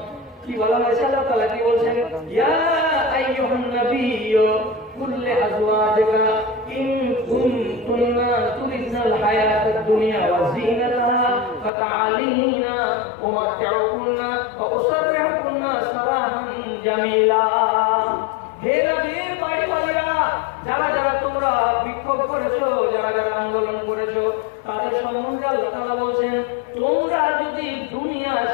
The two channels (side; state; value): right; drops out; at 11.7 s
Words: কি বলা হয়েছে? আল্লাহ তাআলা কি বলছেন? ইয়া আইয়ুহান নাবিয়্যু কুল লিআজওয়াজিকা ইন কুনতুন্না তুরিদনাল হায়াতাদ দুনিয়া ওয়া যিনাতাহা ফাতাআলিনা উমাত্তিউকুন্না ওয়া উসাররিহুকুন্না সারাহান জামিলা। হে নবীর বাড়িওয়ালিরা, যারা যারা তোমরা বিক্ষোভ করেছো, যারা যারা আন্দোলন করেছো, তাদের সম্বন্ধে আল্লাহ তাআলা বলছেন তোমরা যদি দুনিয়া